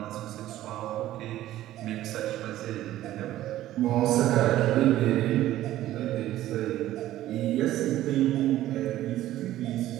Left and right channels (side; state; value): left; quieter; 14.1 dB